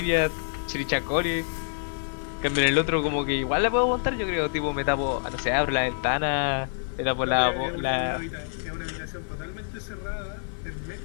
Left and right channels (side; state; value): right; silent; 60 dB below the other